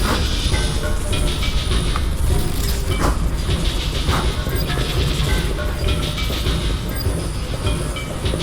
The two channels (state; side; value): identical; both; correlation 1.00